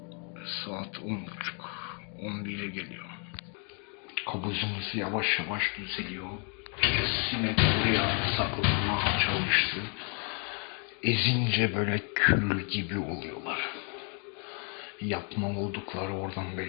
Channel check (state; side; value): quieter; right; 39.3 dB